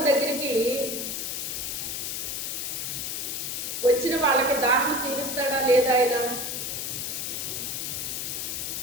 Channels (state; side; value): noise; left; hiss, 3 dB below the sound